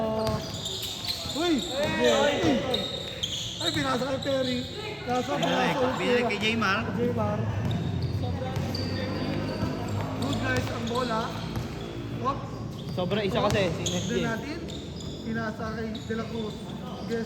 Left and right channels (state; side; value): identical; both; correlation 1.00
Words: Uy! Ay, pinasa kay Perry. Kaso, pinasa ulit Binalik kay Jaymar. Jaymar. Good guys ang bola. Hop. Sobra isa kasi. Then natin, pinasa kay De La Cruz.